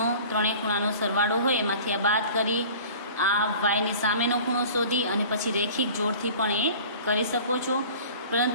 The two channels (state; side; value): inverted; both; correlation -0.44